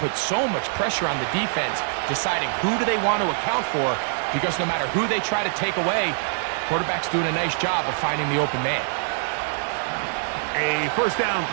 so much pressure on the defense, deciding who do they want to account for, because no matter who they try to take away, quarterback's doing a nice job of finding the open man. A 1st down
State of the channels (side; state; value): left; silent; digital silence